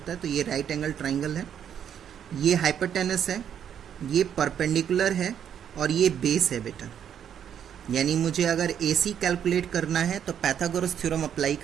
है. तो ये राइट एंगल ट्राइंगल है. ये हाइपोटेनस है, ये परपेंडिकुलर है और ये बेस है बेटा. यानी मुझे अगर AC कैलकुलेट करना है तो पाइथागोरस थ्योरम अप्लाई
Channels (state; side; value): quieter; left; 9.0 dB